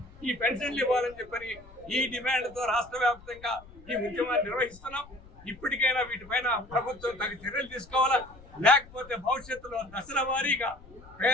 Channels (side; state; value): left; noise; rumble, 21 dB below the sound